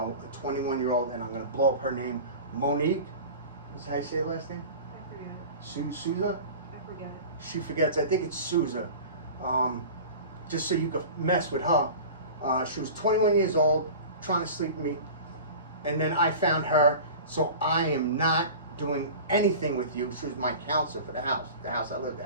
a 21-year-old, and I'm going to blow up her name, Monique. Is that how you say her last name? I forget it. Souza? I forget it. She forgets. I think it's Souza. Just so you could mess with her. She was 21 years old, trying to sleep with me. And then I found her, so I am not doing anything with you. She was my counselor for the house I lived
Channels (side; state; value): both; inverted; correlation -0.36